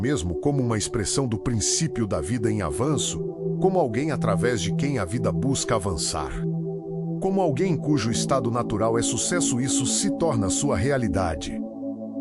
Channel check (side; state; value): both; identical; correlation 1.00